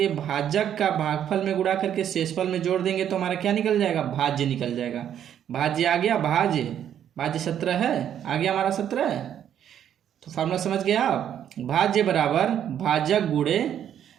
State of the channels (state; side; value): quieter; left; 9.8 dB